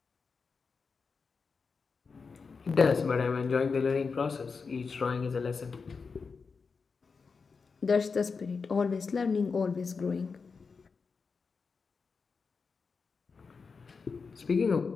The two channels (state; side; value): quieter; right; 5.0 dB